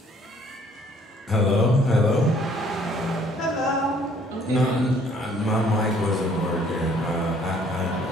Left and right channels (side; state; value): both; normal; correlation 0.60